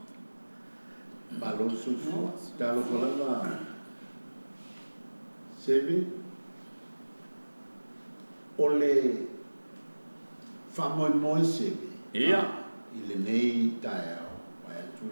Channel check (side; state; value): both; inverted; correlation -1.00